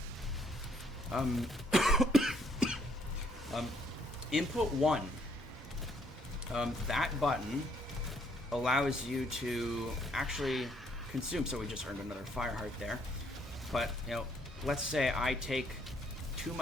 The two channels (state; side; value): normal; both; correlation 0.68